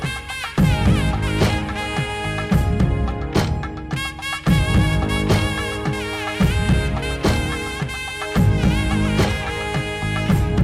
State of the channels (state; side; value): identical; both; correlation 1.00